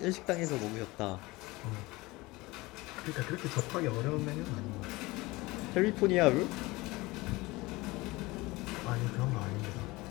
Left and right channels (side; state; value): right; quieter; 21.7 dB